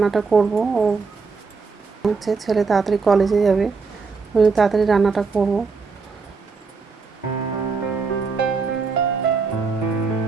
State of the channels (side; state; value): left; quieter; 4.7 dB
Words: করব। ও ছেলে তাড়াতাড়ি কলেজে যাবে, তাড়াতাড়ি রান্নাটা করব।